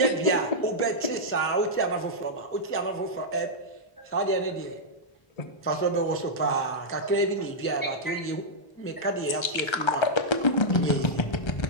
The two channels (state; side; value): late; right; 1.3 ms